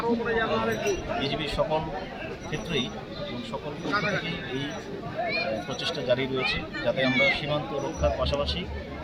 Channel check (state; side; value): identical; both; correlation 1.00